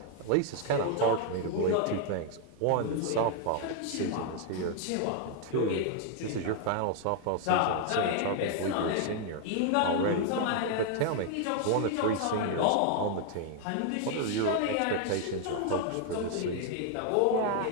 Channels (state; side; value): different; both; correlation 0.00